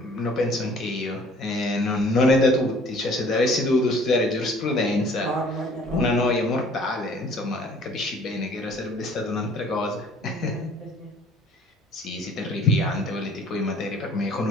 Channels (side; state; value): both; normal; correlation 0.54